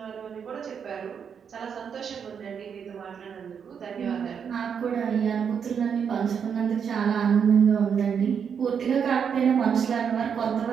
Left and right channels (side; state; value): left; quieter; 7.2 dB